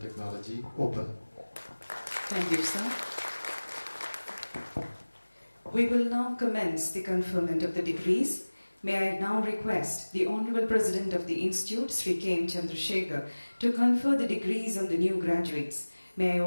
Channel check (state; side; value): inverted; both; correlation -1.00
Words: open. Thank you, sir. We will now commence the conferment of the degrees. May I now request the Honorable President of the Institute, Sri K. M. Chandrasekhar, to confer the degrees on the new graduates. May I